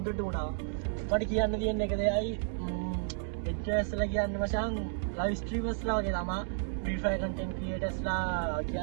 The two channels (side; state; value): left; silent; digital silence